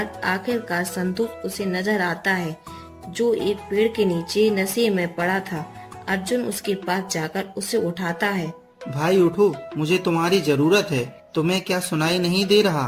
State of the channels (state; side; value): identical; both; correlation 1.00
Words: आखिरकार संतोष उसे नजर आता है, जो एक पेड़ के नीचे नशे में पड़ा था। अर्जुन उसके पास जाकर उसे उठाता है। भाई उठो, मुझे तुम्हारी जरूरत है। तुम्हें क्या सुनाई नहीं दे